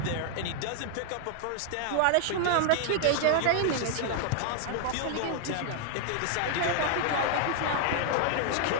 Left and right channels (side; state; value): both; different; correlation 0.00